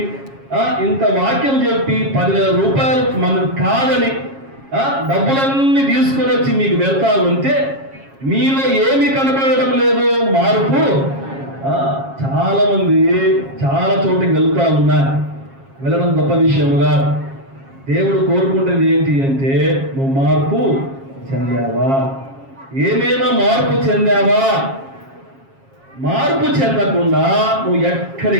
ఇంత వాక్యం చెప్పి 10,000 రూపాయలు మనకు కాదని డబ్బులన్నీ తీసుకొని వచ్చి మీకు వెళ్తా ఉంటే మీలో ఏమి కనపడడం లేదు మార్పు. చాలా మంది చాలా చోటుకి వెళ్తా ఉన్నారు. వెళ్ళడం గొప్ప విషయముగా దేవుడు కోరుకుంటుంది ఏంటి అంటే నువ్వు మార్పు చెందావా, ఏమైనా మార్పు చెందావా? మార్పు చెందకుండా నువ్వు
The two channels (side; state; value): left; late; 7.4 ms